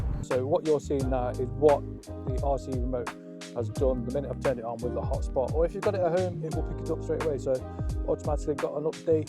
So what you're seeing now is what the RC Remote has done the minute I've turned it on with the hotspot, or if you've got it at home, it will pick it up straight away. So automatically got an update.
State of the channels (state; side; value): identical; both; correlation 1.00